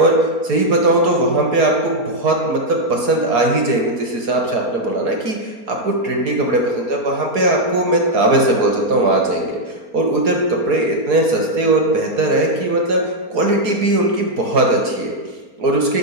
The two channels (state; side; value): late; left; 4.3 ms